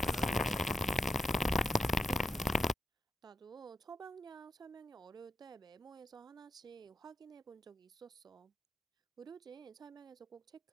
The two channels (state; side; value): normal; both; correlation 0.85